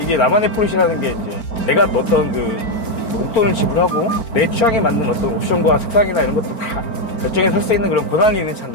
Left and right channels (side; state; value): right; late; 4.4 ms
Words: 나만의 포르쉐라는 게 이제 내가 어떤 그 목돈을 지불하고 내 취향에 맞는 어떤 옵션과 색상이나 이런 것도 다 결정해서 살 수 있는 그런 권한이 있는